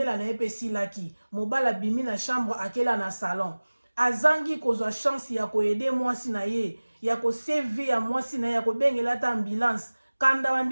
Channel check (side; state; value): both; inverted; correlation -1.00